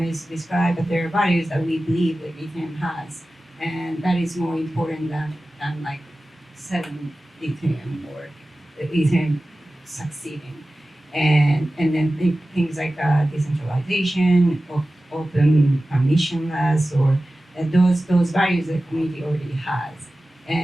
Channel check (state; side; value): normal; both; correlation 0.96